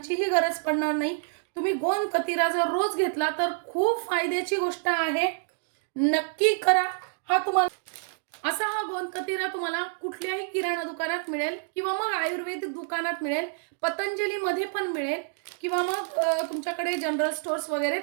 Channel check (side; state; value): left; silent; digital silence